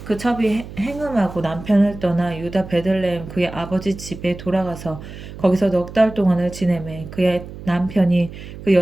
그 첩이 행음하고 남편을 떠나 유다 베들레헴 그의 아버지 집에 돌아가서 거기서 넉 달 동안을 지내매 그의 남편이 그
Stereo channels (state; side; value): noise; right; hum, 13 dB below the sound